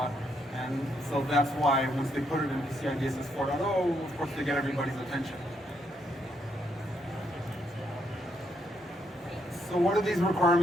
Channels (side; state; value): both; normal; correlation 0.76